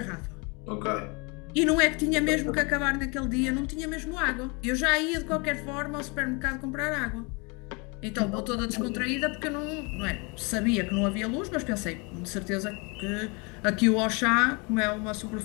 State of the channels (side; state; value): right; quieter; 30.4 dB